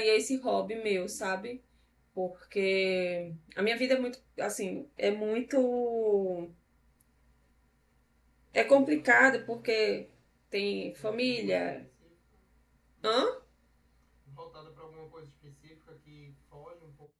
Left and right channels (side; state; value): both; identical; correlation 1.00